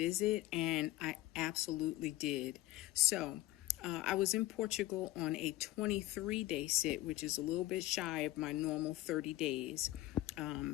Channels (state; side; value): quieter; right; 16.6 dB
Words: and I absolutely did. So I was in Portugal on a 23-day sit, which is a little bit shy of my normal 30 days.